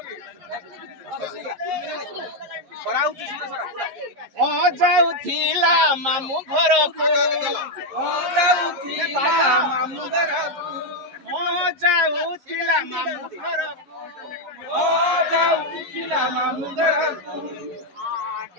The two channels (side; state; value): left; late; 11 ms